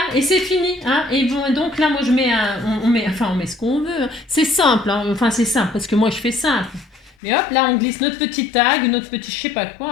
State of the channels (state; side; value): drops out; right; at 7.2 s